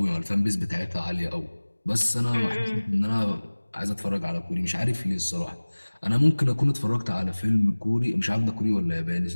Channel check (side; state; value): both; inverted; correlation -1.00